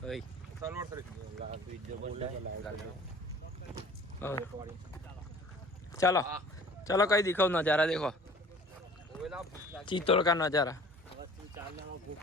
भाई सलवार सर चलो चलो कहीं दिखाओ नज़ारा देखो चित्तौड़ का नज़ारा।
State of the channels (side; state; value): both; normal; correlation 0.47